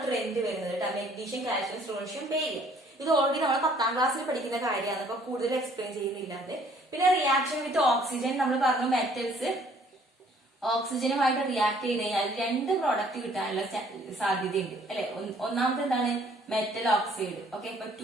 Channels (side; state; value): both; normal; correlation 0.60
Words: ട്രെൻഡ് വരുന്നത് കേട്ടോ, മെഗ്നീഷ്യം, കാൽഷ്യം, സ്ട്രോൺഷ്യം, ബേരിയം. ഇത് ഓൾറെഡി നമ്മൾ 10ാം ക്ലാസ്സിൽ പഠിക്കുന്ന കാര്യമാണ്, അപ്പൊ കൂടുതൽ എക്സ്പ്ലെയിൻ ചെയ്യുന്നില്ലാതെ. പിന്നെ റിയാക്ഷൻ വിത്ത് ഓക്സിജൻ നമ്മൾ പറഞ്ഞു, മെറ്റൽസ് ഓക്സിജനുമായിട്ട് റിയാക്ട് ചെയ്ത് കഴിഞ്ഞാൽ 2 പ്രോഡക്റ്റ് കിട്ടാനുള്ള സാധ്യതയുണ്ട് അല്ലെ. ഒന്നാമത്തെ എന്താണ്, മെറ്റൽ ഓക്സൈഡ്. ഓക്കെ. ഇപ്പൊ